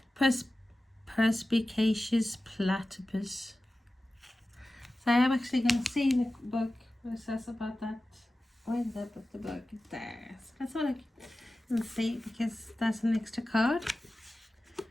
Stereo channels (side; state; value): both; normal; correlation 0.95